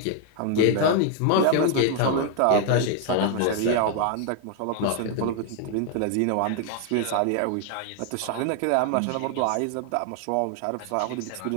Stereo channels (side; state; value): both; different; correlation 0.00